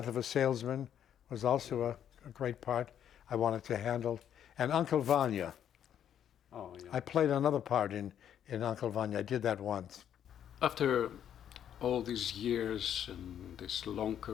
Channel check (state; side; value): quieter; right; 9.7 dB